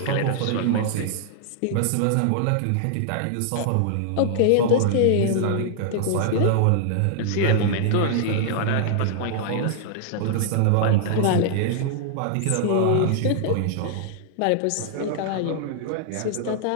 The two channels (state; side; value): different; both; correlation -0.01